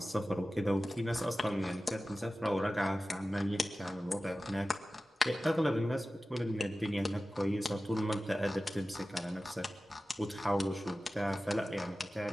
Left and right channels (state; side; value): normal; both; correlation 0.96